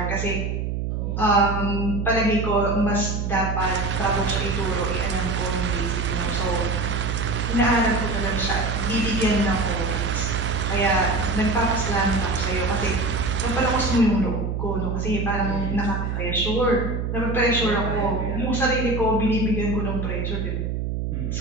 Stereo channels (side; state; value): right; noise; hum, 2 dB below the sound